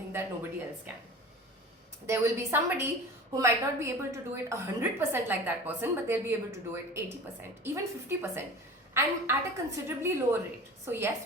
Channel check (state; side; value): normal; both; correlation 0.37